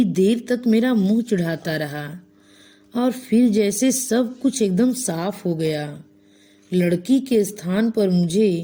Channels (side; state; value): both; identical; correlation 1.00